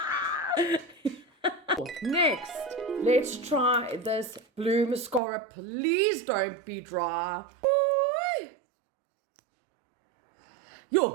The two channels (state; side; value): drops out; left; at 5.2 s